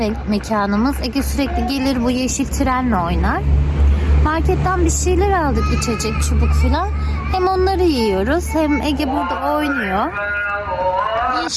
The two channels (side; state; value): both; identical; correlation 1.00